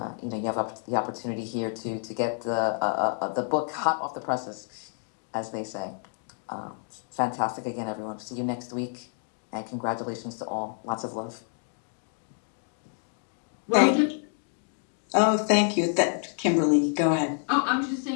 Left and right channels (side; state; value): right; silent; 59 dB below the other